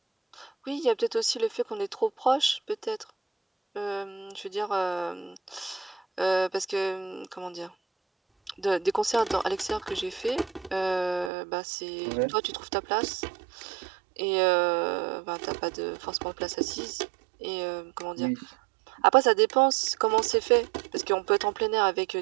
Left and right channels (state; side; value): drops out; left; at 11.3 s